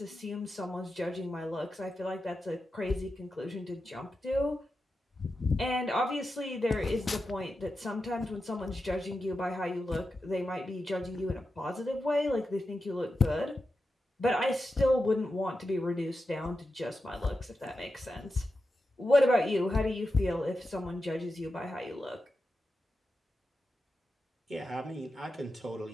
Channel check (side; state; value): both; normal; correlation 0.90